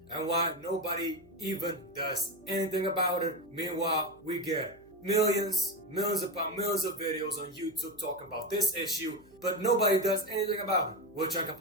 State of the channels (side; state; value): right; noise; hum, 28 dB below the sound